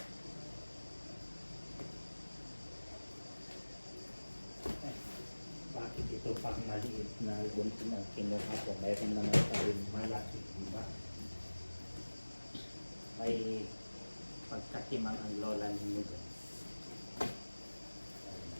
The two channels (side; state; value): both; inverted; correlation -1.00